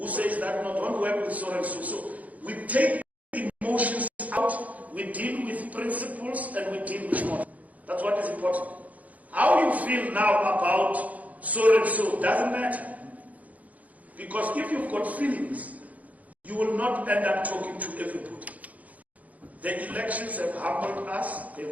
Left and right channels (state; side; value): late; left; 0.073 ms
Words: says that no, don't work with so and so. So we take emotions out, we deal with principles, and we deal with models. That's what is important. How you feel now about so and so doesn't matter. Because if you've got feelings, you will not end up talking to everybody. The elections have humbled us,